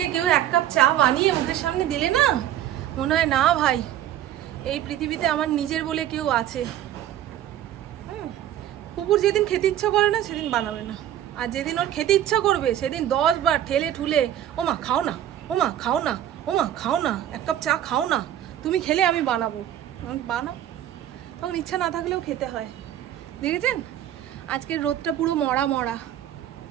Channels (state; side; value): quieter; left; 11.7 dB